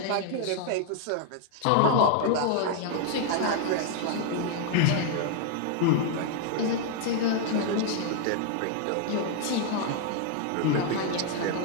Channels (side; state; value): both; different; correlation 0.00